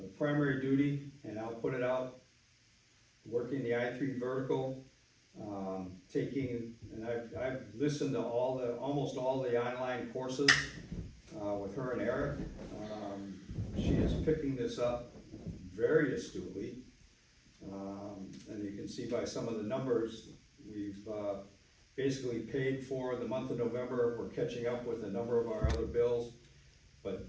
the primary duty, and I'll put it out, working the I-3 vertical, taking, and I've listened to almost all the online courses, with her and Eric. She is picking this up very astutely. And you can see by some of the numbers, we've, basically paid for the month of November. We're catching up with a number of our other bills. But,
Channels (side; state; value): both; identical; correlation 1.00